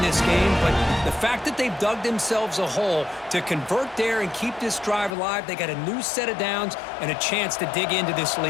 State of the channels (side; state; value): right; drops out; at 5.1 s